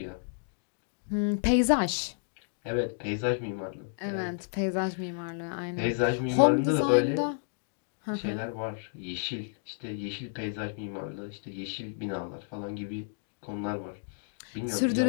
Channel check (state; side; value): silent; right; digital silence